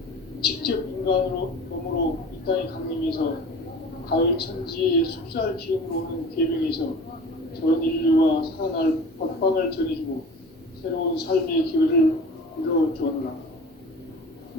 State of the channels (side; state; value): both; normal; correlation 0.39